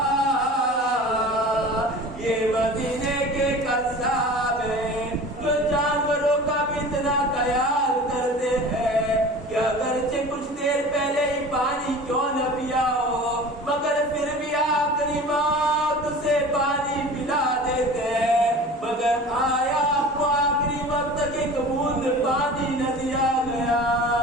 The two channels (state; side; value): normal; both; correlation 0.39